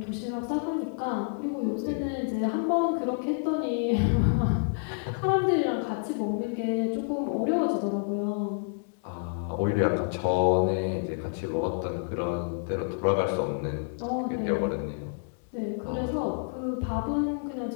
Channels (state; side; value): silent; right; digital silence